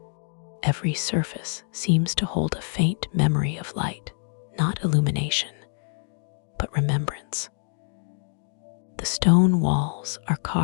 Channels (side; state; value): right; silent; digital silence